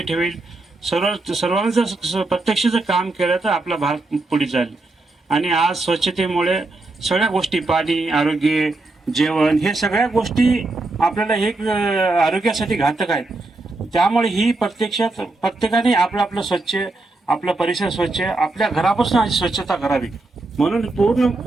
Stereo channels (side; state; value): left; quieter; 3.1 dB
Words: सर्वांनी जर प्रत्यक्ष जर काम केलं तर आपला भारत पुढे जाईल। आणि आज स्वच्छतेमुळे सगळ्या गोष्टी, पाणी, आरोग्य, जेवण, हे सगळ्या गोष्टी आपल्याला हे आरोग्यासाठी घातक आहेत। त्यामुळे ही प्रत्यक्षात प्रत्येकाने आपलं स्वच्छ, आपला परिसर स्वच्छ, आपल्या घरापासून स्वच्छता करावी। म्हणून पूर्ण